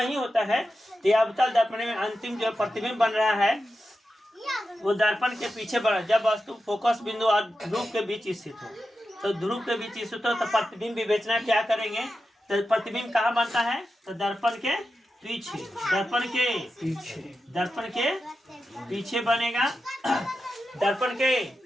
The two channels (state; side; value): normal; both; correlation 0.90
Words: होता है। तो ये अवतल दर्पण में अंतिम जो प्रतिबिंब बन रहा है वो दर्पण के पीछे बना। जब वस्तु फोकस बिंदु और ध्रुव के बीच स्थित हो, तो ध्रुव के बीच स्थित हो तो प्रतिबिंब विवेचना क्या करेंगे, तो प्रतिबिंब कहाँ बनता है, तो दर्पण के पीछे, दर्पण के पीछे, दर्पण के पीछे बनेगा। दर्पण के